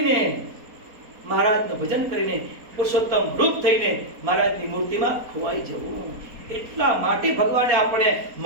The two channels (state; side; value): late; left; 4.2 ms